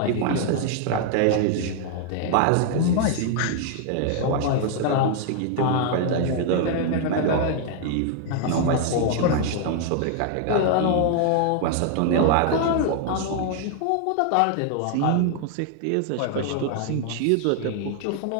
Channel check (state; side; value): different; both; correlation 0.00